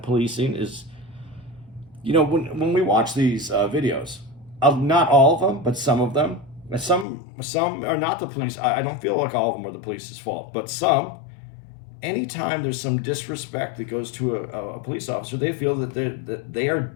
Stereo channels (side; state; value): right; drops out; at 7.1 s